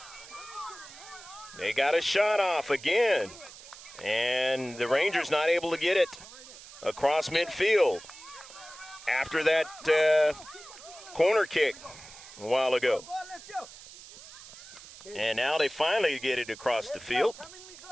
They got a shot off again. And the Rangers not able to get it across midfield after that corner kick a while ago. And now they finally get it across the field.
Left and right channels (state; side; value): noise; right; hiss, 17 dB below the sound